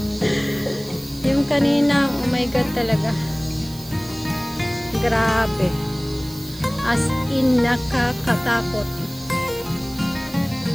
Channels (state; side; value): noise; right; hiss, 18 dB below the sound